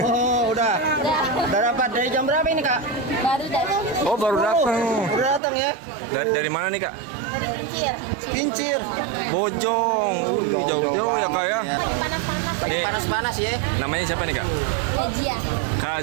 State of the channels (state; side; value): drops out; left; at 5.4 s